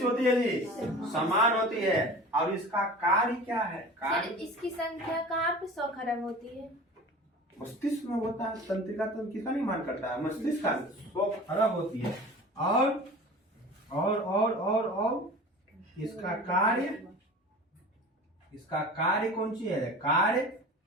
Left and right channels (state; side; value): normal; both; correlation 0.38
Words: होती है जी? समान होती है। और इसका कार्य क्या है? कार्य इसकी संख्या कहाँ पे 100 खरब होती है? मस्तिष्क में होता है। तंत्रिका तंत्र किसका निर्माण करता है? मस्तिष्क का। 100 खरब होती है। और इसका कार्य, इसका कार्य कौन सी है? कार्य